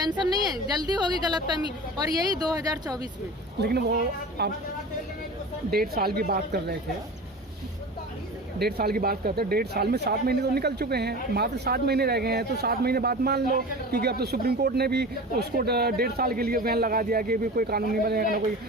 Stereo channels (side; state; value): both; normal; correlation 0.34